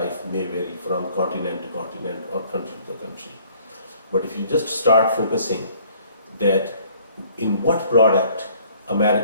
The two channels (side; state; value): both; inverted; correlation -0.58